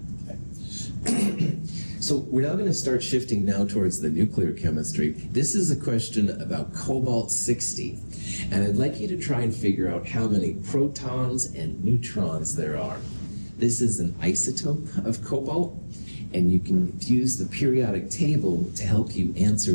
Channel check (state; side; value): inverted; both; correlation -1.00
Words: So we're now going to start shifting now towards the nuclear chemistry. This is a question about cobalt-60, and I'd like you to try and figure out how many protons and neutrons there are. This is an isotope of cobalt, and you can use the periodic table to help you answer